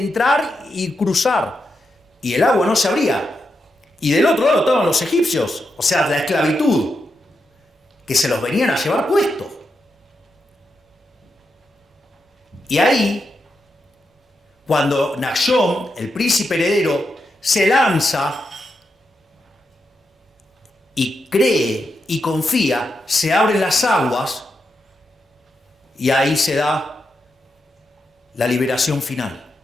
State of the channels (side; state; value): both; normal; correlation 0.85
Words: y cruzar. Y el agua no se abría. Y del otro lado estaban los egipcios, o sea, la esclavitud, que se los venían a llevar puestos. Y ahí, cuando Nachshon, el príncipe heredero, se lanza y cree y confía, se abren las aguas y ahí se da la liberación final.